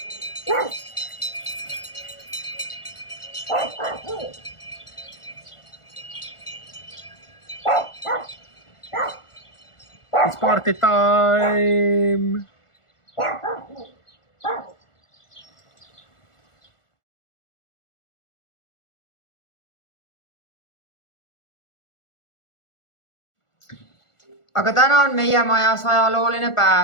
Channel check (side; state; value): right; late; 1.4 ms